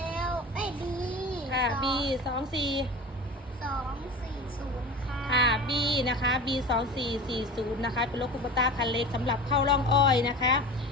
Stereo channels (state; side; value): normal; both; correlation 0.34